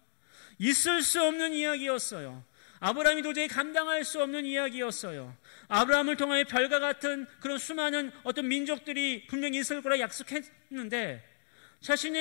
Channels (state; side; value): silent; right; digital silence